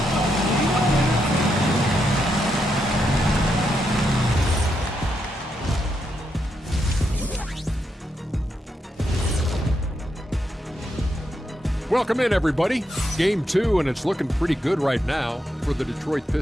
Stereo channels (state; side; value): normal; both; correlation 0.82